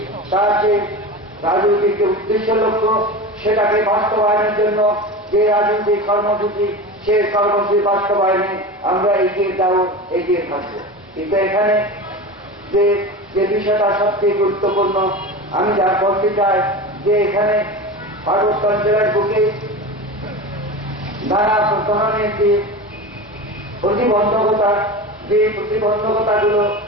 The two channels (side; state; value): both; normal; correlation 0.28